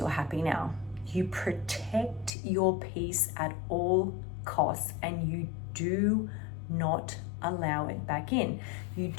happy now. You protect your peace at all costs, and you do not allow it back in. You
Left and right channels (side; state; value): right; drops out; at 2.4 s